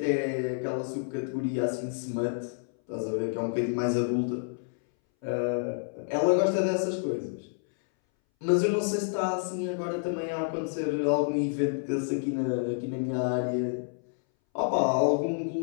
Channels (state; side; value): silent; right; 59 dB below the other